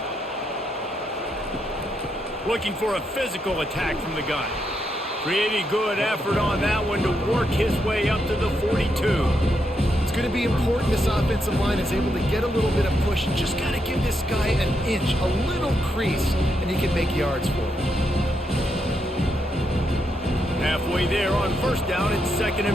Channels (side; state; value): both; normal; correlation 0.80